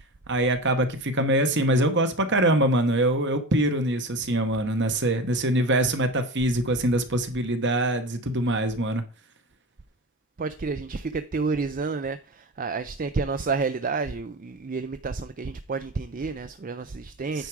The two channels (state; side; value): normal; both; correlation 0.29